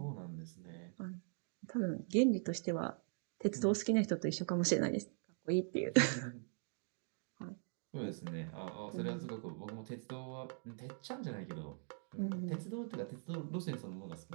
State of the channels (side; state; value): left; silent; 50 dB below the other